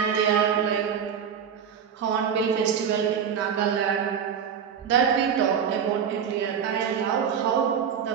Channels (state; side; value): quieter; left; 7.7 dB